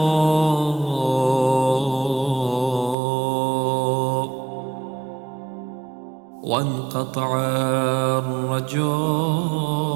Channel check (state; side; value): drops out; left; at 3.0 s